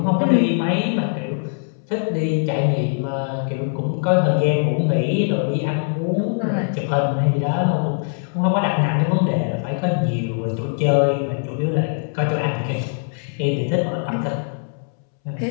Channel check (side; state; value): right; silent; 65 dB below the other